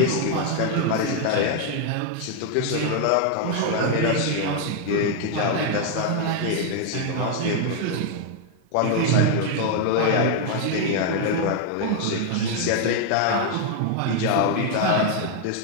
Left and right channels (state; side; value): different; both; correlation 0.00